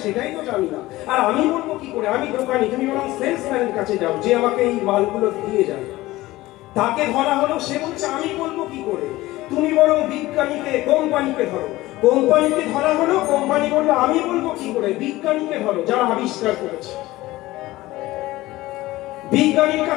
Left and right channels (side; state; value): right; quieter; 18.0 dB